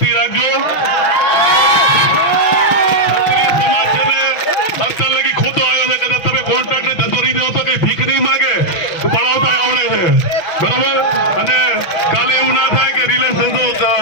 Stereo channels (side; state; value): right; late; 6.0 ms